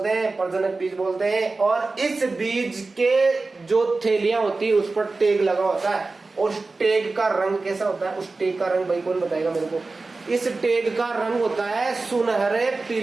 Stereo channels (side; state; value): left; quieter; 3.6 dB